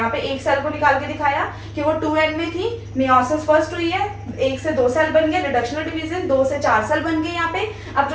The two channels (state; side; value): identical; both; correlation 1.00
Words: पे एक सेल को निकाल के दिखाया कि वो 2n में थी, मियोसिस फर्स्ट हुई है, 1 से 2 सेल बन गए, रिडक्शनल डिवीजन 2 से 4 सेल बन गए यहाँ पे। अब